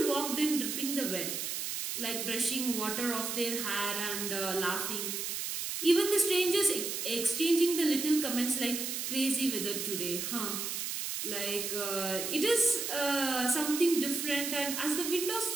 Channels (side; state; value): right; noise; hiss, 3 dB below the sound